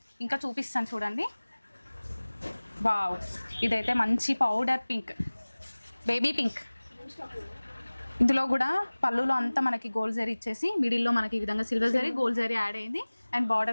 ఇంకా చూపిస్తాను చూడండి. వావ్, ఇదైతే మంచి పౌడర్ పింక్, బేబీ పింక్. ఇందులో కూడా పళ్ళులో అంతా మనకి గోల్డ్ జరీ ఇచ్చేసి మిడిల్లో మనకి ఈ విధంగా silver zari, gold zari add అయింది. అండ్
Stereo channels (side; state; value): both; inverted; correlation -1.00